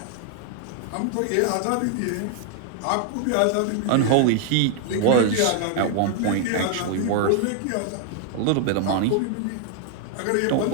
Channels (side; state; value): both; different; correlation 0.00